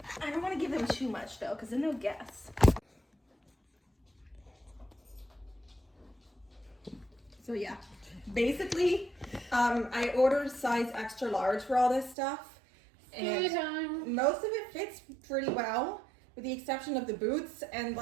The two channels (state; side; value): drops out; left; at 12.2 s